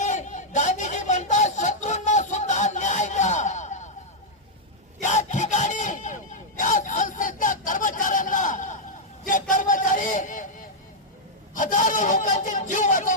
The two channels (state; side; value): normal; both; correlation -0.05